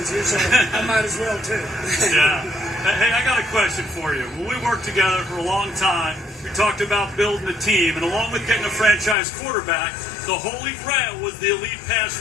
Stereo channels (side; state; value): right; drops out; at 9.2 s